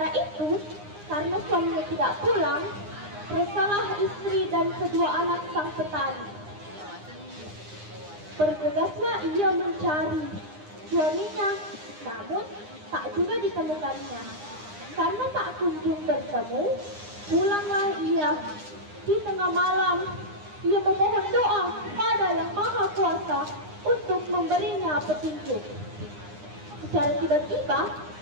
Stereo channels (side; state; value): left; late; 9.8 ms